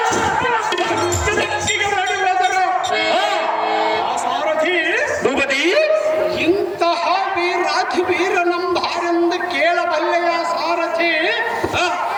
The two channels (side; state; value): both; identical; correlation 1.00